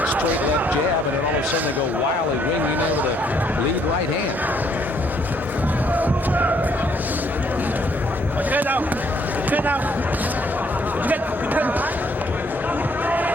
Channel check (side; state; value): both; normal; correlation 0.67